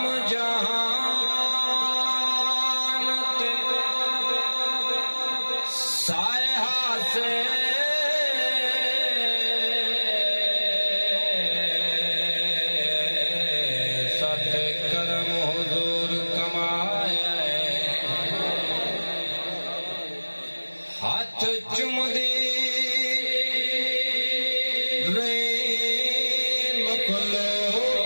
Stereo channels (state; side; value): inverted; both; correlation -1.00